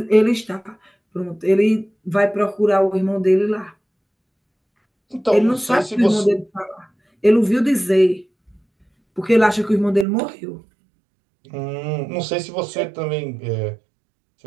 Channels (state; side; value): drops out; left; at 10.1 s